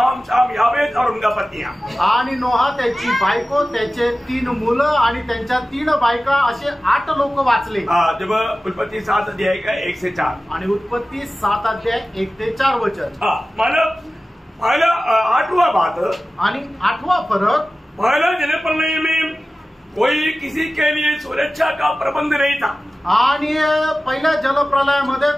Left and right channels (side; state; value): both; normal; correlation 0.96